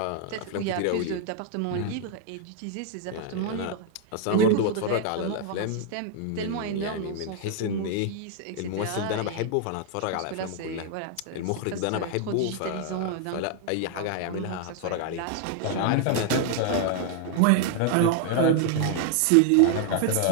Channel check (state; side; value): different; both; correlation 0.00